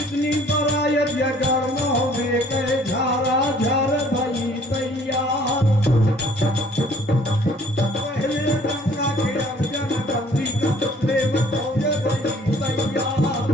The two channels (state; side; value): normal; both; correlation 0.56